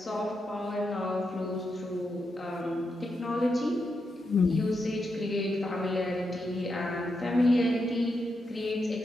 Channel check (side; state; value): both; normal; correlation 0.85